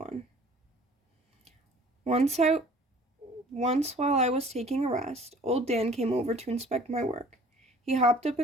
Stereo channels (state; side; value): normal; both; correlation 0.51